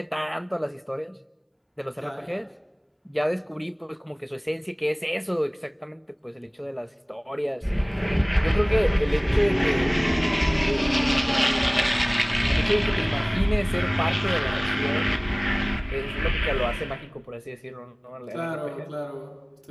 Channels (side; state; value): both; identical; correlation 1.00